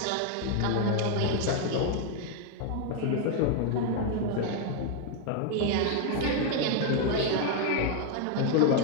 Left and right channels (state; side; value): different; both; correlation 0.01